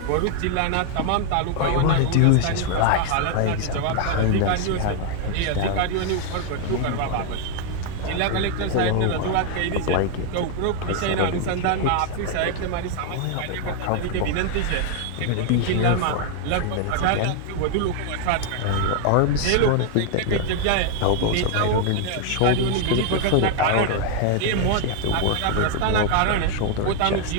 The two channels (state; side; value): different; both; correlation 0.00